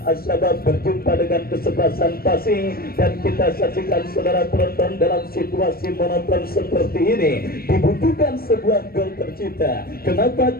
Asyabab berjumpa dengan kesebelasan Pasing, dan kita saksikan saudara penonton dalam situasi situasi monoton seperti ini dibutuhkan sebuah gol tercipta. Kenapa?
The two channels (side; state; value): right; late; 0.44 ms